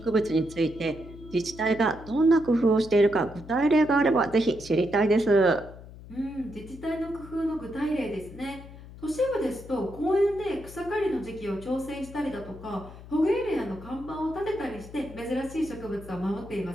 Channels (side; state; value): left; noise; hum, 16 dB below the sound